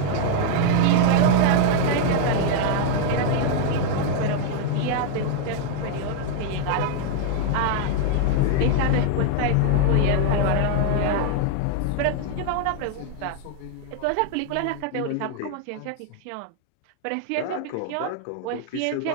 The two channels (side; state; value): both; different; correlation 0.00